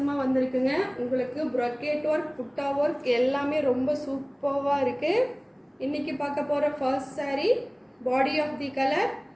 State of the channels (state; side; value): identical; both; correlation 1.00